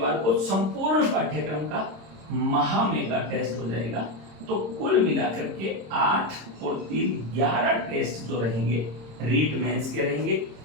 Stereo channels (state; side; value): late; left; 26 ms